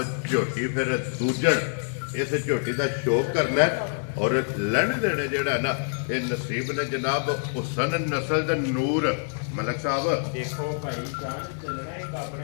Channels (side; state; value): right; silent; digital silence